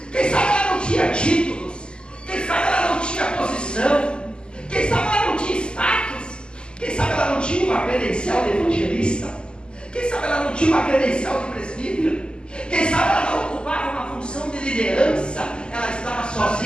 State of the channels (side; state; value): right; late; 0.049 ms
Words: quem sabe ela não tinha títulos, quem sabe ela não tinha posição, quem sabe ela não tinha status, quem sabe ela não tinha uma credencial de evangelista, quem sabe ela não tinha uma credencial de presbítero, quem sabe ela não ocupava uma função de liderança, ela estava